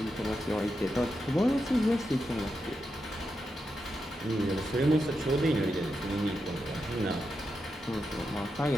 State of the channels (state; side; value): normal; both; correlation 0.86